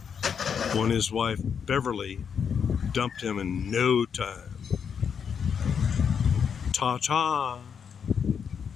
when his wife Beverly dumped him in no time. Ta-ta.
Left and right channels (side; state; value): right; quieter; 7.1 dB